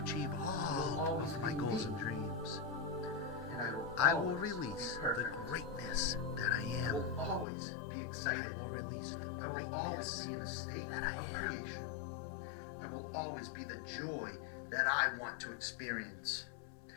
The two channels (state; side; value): drops out; right; at 7.5 s